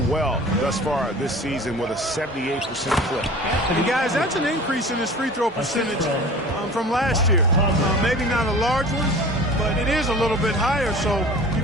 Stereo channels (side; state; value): both; normal; correlation 0.41